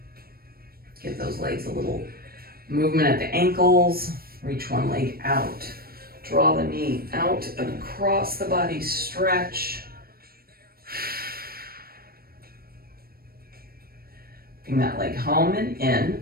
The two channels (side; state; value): left; late; 0.44 ms